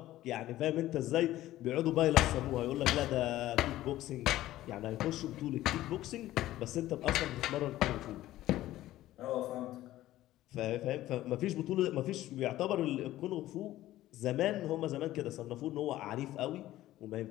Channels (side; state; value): right; quieter; 15.0 dB